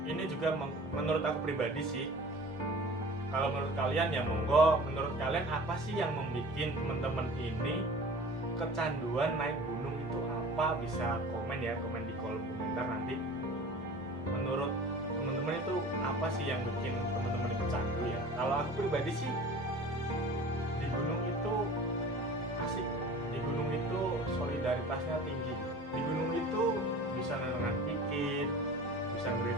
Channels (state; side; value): normal; both; correlation 0.41